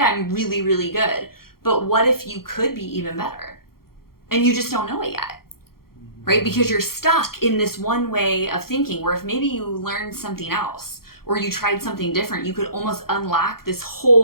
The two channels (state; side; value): late; right; 0.93 ms